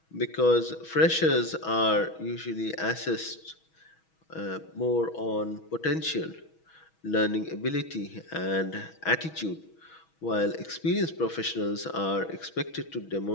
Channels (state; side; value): late; right; 6.2 ms